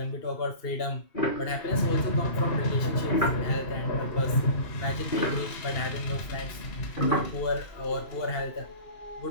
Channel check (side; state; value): right; late; 2.7 ms